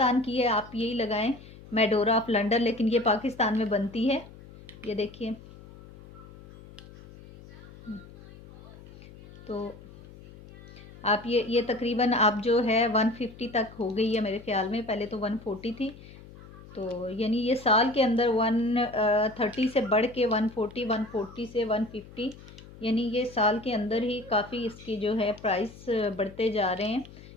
की है, आप यही लगाएं, मेडोरा ऑफ लंदन, लेकिन ये पाकिस्तान में बनती है। ये देखिए, तो आप ये तकरीबन आप जो है 150 तक हो गई है मेरे ख्याल में, पहले तो 140 थी, तो यानी ये साल के अंदर 130 से बढ़ के 140, 140 से 150, यानी ये साल के अंदर ही काफ़ी इसकी जो है प्राइस बढ़ते जा रहे हैं।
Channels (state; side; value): noise; left; hum, 19 dB below the sound